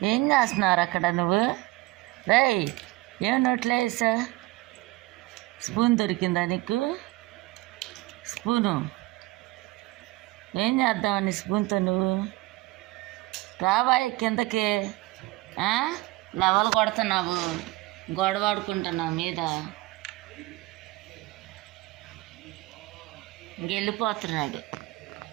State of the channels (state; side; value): quieter; left; 20.4 dB